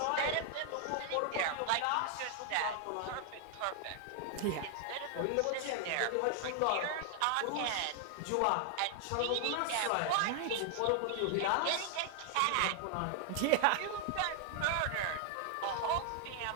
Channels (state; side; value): different; both; correlation 0.00